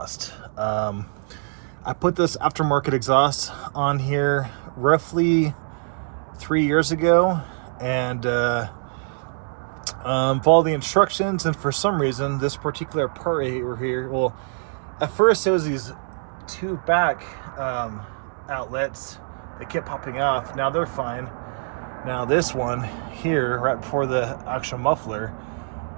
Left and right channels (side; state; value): left; silent; 63 dB below the other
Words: I put this aftermarket exhaust on here roughly 3 years ago, and followed the instructions, and for some reason this particular part right here, well, at first it was these two back outlets that kept popping off. Now they're fine. Now this one here, right before the actual muffler,